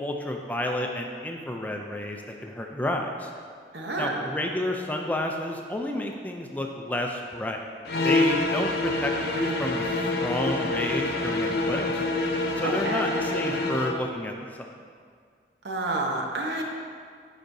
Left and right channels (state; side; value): normal; both; correlation 0.44